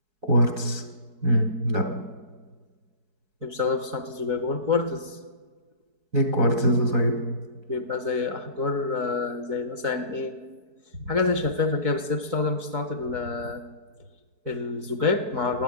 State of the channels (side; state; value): left; late; 4.7 ms